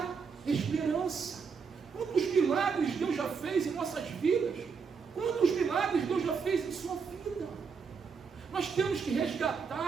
esperança. Quantos milagres Deus já fez em nossas vidas? Quantos milagres Deus já fez em sua vida? Nós temos que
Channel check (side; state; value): left; quieter; 5.7 dB